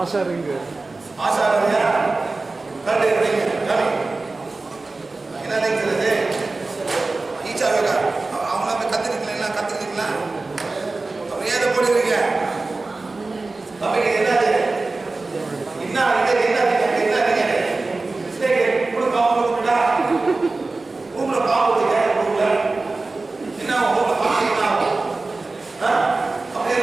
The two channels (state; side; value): quieter; left; 3.5 dB